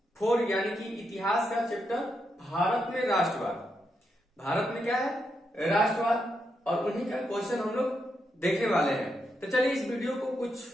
4 यानी कि इतिहास का चैप्टर भारत में राष्ट्रवाद। भारत में क्या है? राष्ट्रवाद। और उन्हीं का क्वेश्चन हम लोग देखने वाले हैं। तो चलिए इस वीडियो को कुछ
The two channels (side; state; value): both; normal; correlation 0.82